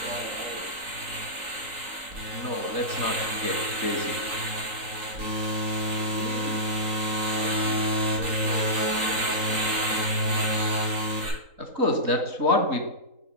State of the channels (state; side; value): late; left; 3.8 ms